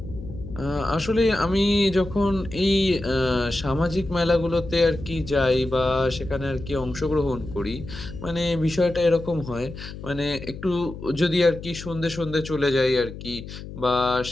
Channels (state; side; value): noise; left; hum, 12 dB below the sound